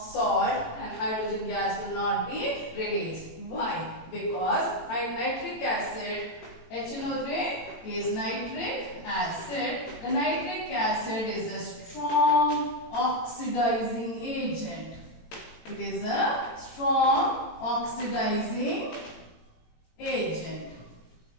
and hydrogen gas will not be released. Why? Because nitric acid, HNO3 is nitric acid. The nitric acid is a strong oxidizing agent. It is a strong oxidizing agent.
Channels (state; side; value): late; right; 18 ms